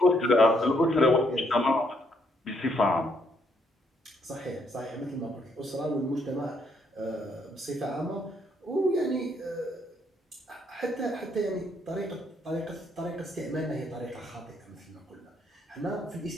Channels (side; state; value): both; normal; correlation 0.72